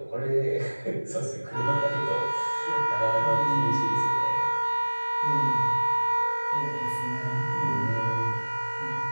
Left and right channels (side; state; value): both; inverted; correlation -1.00